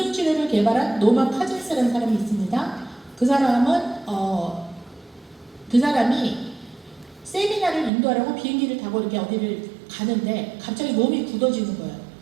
개발한 노만 카진스라는 사람이 있습니다. 그 사람이 세미나를 인도하려고 비행기를 타고 이렇게 어디를 가는데 갑자기 몸이 굳어지는 거예요.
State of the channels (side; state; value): left; drops out; at 7.9 s